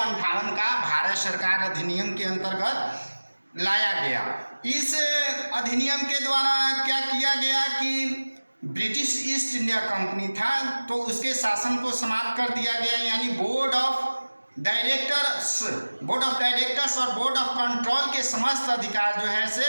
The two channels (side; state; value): both; inverted; correlation -1.00